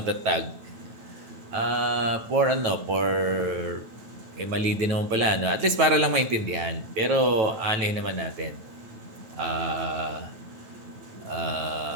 Mali din naman pala, no? At least para lang maintindihan. Pero, naman natin.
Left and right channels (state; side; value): late; left; 9.1 ms